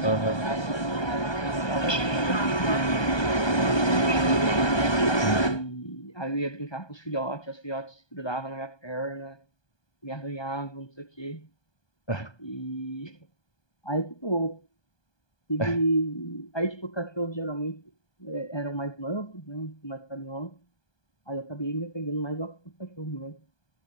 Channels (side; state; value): right; late; 1.2 ms